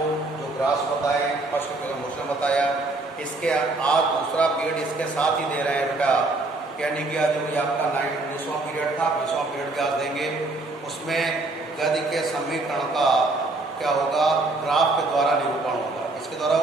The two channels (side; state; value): left; quieter; 3.1 dB